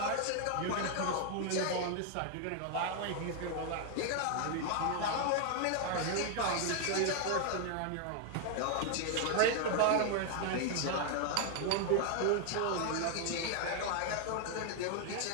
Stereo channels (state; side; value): different; both; correlation 0.00